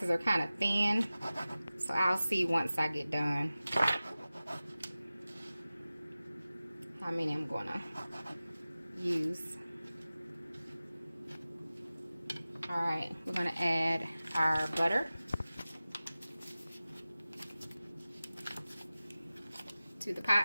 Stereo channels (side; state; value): both; inverted; correlation -0.96